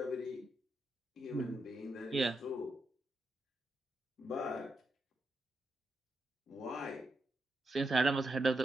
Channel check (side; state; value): both; normal; correlation 0.84